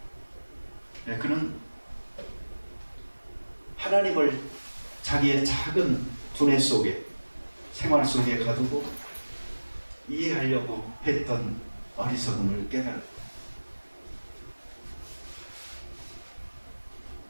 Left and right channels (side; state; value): both; inverted; correlation -1.00